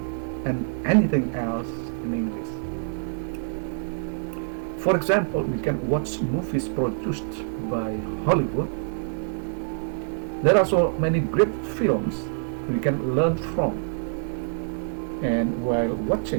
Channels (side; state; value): left; silent; digital silence